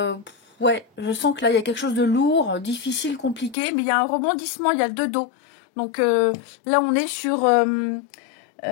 Ouais, je sens que là, il y a quelque chose de lourd, difficile, compliqué, mais il y a un rebondissement, il y a le 2 dos. Donc là, on est sur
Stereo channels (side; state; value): right; drops out; at 3.6 s